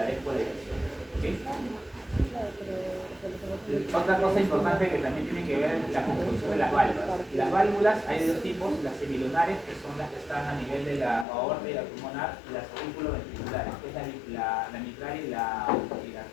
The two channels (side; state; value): right; drops out; at 11.2 s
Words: despoliarización. ¿Okay? Otra cosa importante que también tiene que ver es la construcción de las válvulas. Las válvulas hay de dos tipos, las semilunares, que son las que están a nivel de la aorta y la pulmonar, y las auriculoventriculares, que es la mitral y la arterial.